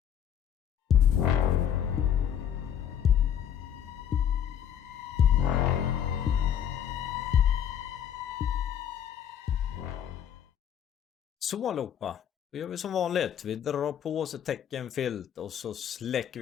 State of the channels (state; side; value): quieter; right; 9.3 dB